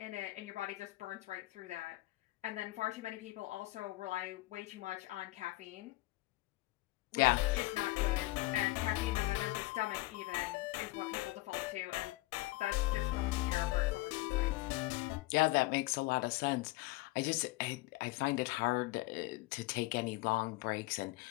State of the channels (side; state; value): right; quieter; 20.0 dB